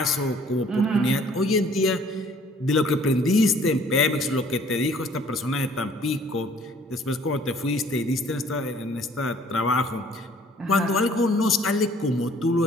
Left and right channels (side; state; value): both; normal; correlation 0.57